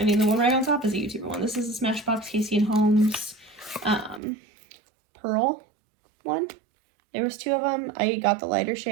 mean, the one right on top is a YouTuber one. This is the Smashbox Casey and Holmes Pearl one. There was 2 of them. I got the lighter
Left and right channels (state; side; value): drops out; left; at 4.2 s